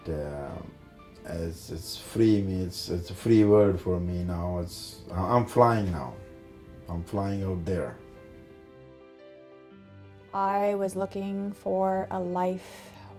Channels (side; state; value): both; identical; correlation 1.00